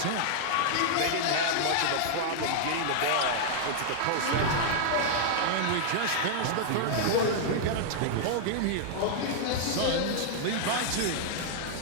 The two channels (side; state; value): both; different; correlation -0.01